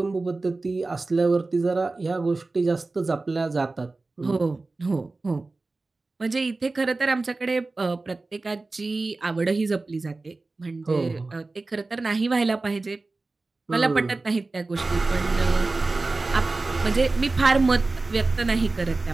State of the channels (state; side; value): quieter; left; 3.4 dB